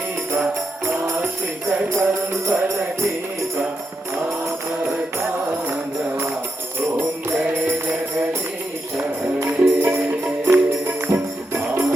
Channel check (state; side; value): normal; both; correlation 0.85